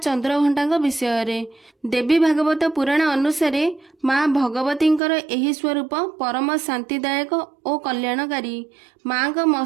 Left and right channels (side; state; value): left; drops out; at 5.0 s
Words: विषय रे। देवी भागवत पुराण अनुसार माँ भगवतींकर एही स्वरूप परम शांतिदायक और कल्याणकारी। माँ का